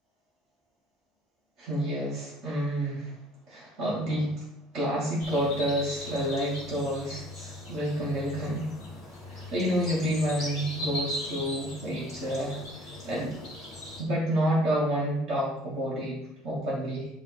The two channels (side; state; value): both; normal; correlation 0.54